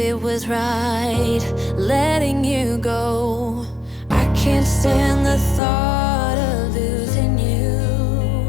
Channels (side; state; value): right; drops out; at 5.6 s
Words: was right letting you go. I can't stand the thought of losing you.